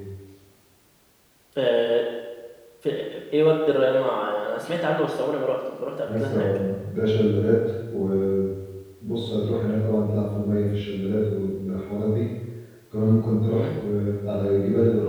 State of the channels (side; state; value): both; identical; correlation 1.00